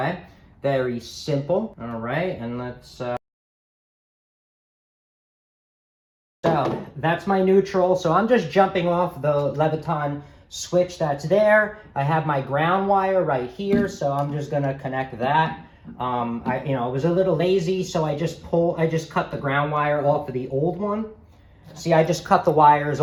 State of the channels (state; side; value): identical; both; correlation 1.00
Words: Very simple, all right? And let's, so that's my neutral. So I'm just jumping off the Leviton switch that's there. I have my ground wire right here, so I'm just gonna connect that. I was a little lazy, so I just cut the ground wire off of the old one. See, I just cut the wires